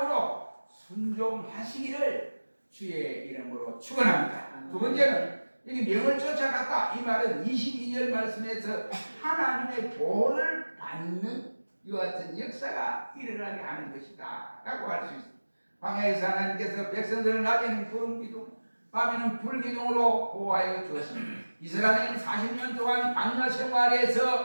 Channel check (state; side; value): inverted; both; correlation -1.00